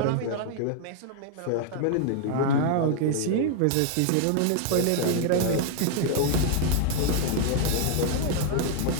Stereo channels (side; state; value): both; different; correlation 0.00